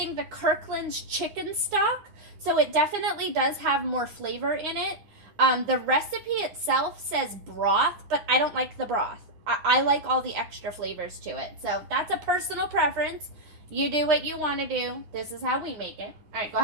the Kirkland's chicken stock, so it definitely does have more flavor in it. The recipe itself says broth, but I don't like the broth. I like all the extra flavors to it. So that's a personal preference. You do what you want to do. This is how we make it. All right, go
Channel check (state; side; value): late; left; 9.9 ms